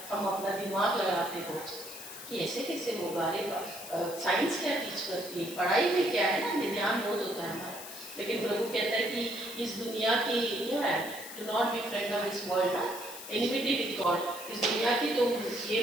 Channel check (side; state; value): left; noise; hiss, 12 dB below the sound